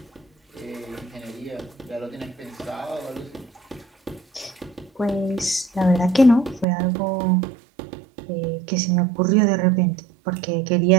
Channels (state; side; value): drops out; left; at 6.7 s